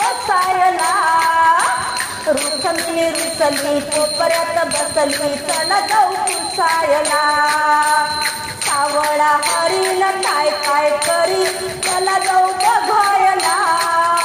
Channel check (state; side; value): identical; both; correlation 1.00